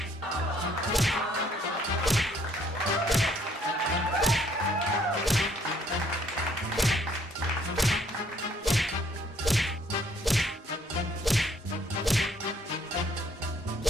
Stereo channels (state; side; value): normal; both; correlation 0.64